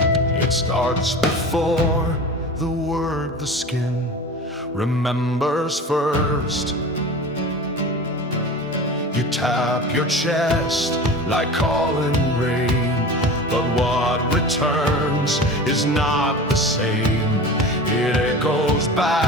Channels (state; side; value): normal; both; correlation 0.34